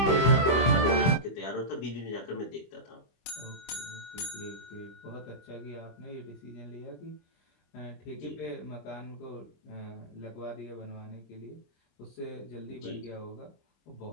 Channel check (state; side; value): late; right; 25 ms